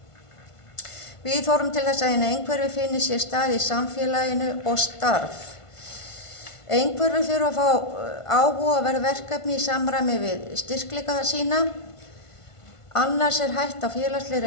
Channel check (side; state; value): right; late; 1.5 ms